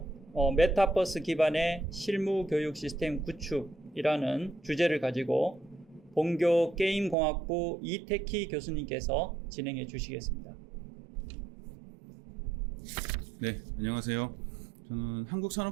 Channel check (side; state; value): left; drops out; at 7.2 s